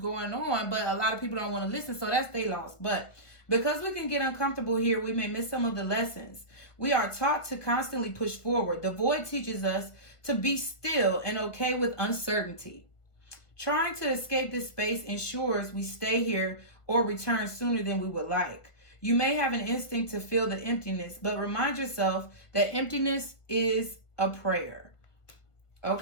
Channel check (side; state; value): right; late; 1.5 ms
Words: on, but a lot of people don't want to listen, so that's they loss. But because we can get uncomfortable here, we may miss some of the lessons. We are taught to constantly push forward. The void teaches us to be still and okay with uncertainty. Trying to escape this space ensures we stay here or return sooner than we would like. You may have an instinct to feel the emptiness, but remind yourself that emptiness is a prayer.